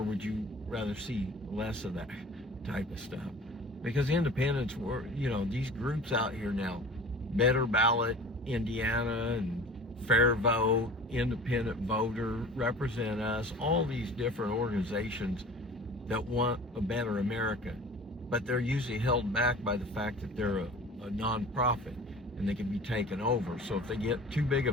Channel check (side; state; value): both; normal; correlation 0.41